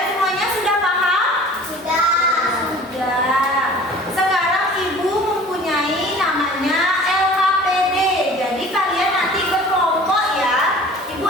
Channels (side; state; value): both; normal; correlation 0.45